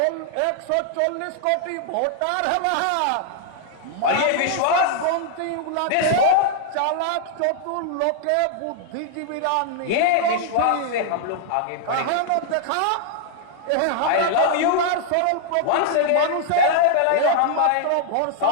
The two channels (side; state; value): both; different; correlation -0.01